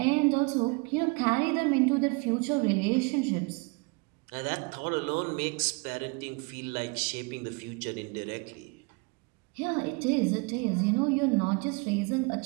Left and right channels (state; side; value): quieter; left; 30.5 dB